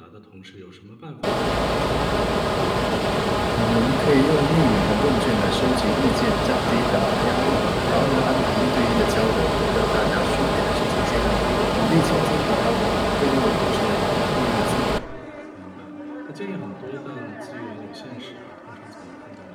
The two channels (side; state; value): both; identical; correlation 1.00